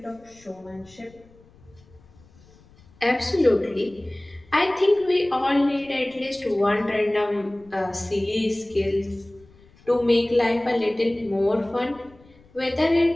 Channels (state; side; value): noise; left; rumble, 27 dB below the sound